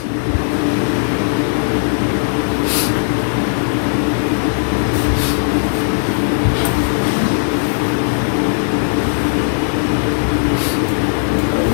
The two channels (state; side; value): silent; right; 62 dB below the other